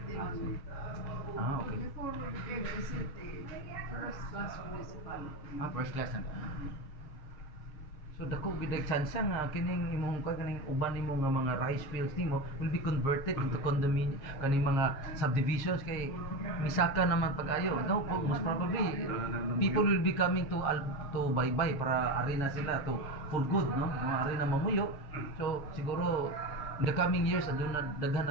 man. Okay. Before we became a city, first class municipality. First class na. So dako gid chance nga kining imong kaning uban nimo nga mga rice fields nimo will be converted into condominium kaning mga subdivisions kay misaka naman pag-ayo. No, most probably people will be coming to Baybay para ari na sila to for good, no? Ari na mamuyo. So siguro in the coming years aduna daghan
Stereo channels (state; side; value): late; right; 7.3 ms